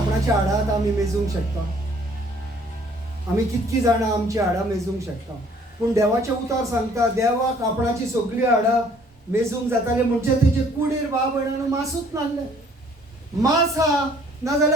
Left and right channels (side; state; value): both; normal; correlation 0.59